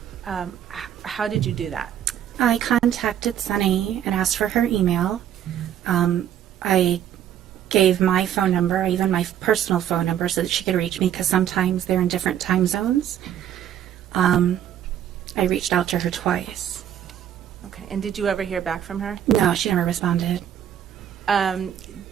How did you do that? I contacted Sunny and asked for her email. I gave my phone number, even my personal phone number, so that she could reach me, because sometimes they're in different time zones. I reached out to her twice. Okay. And did you ever hear back from her? No, she never responded.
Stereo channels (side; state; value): left; quieter; 10.3 dB